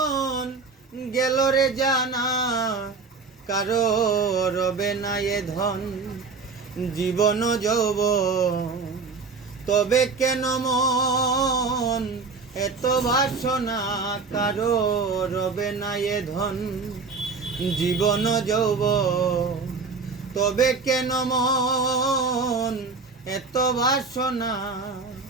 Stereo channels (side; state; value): left; quieter; 4.5 dB